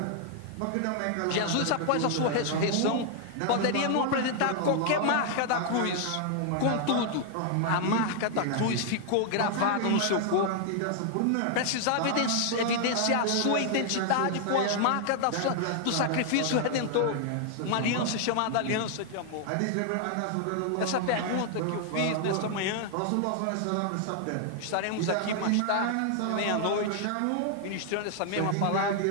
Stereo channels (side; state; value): both; different; correlation 0.00